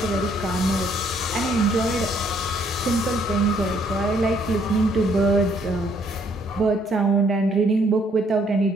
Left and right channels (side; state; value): both; normal; correlation 0.67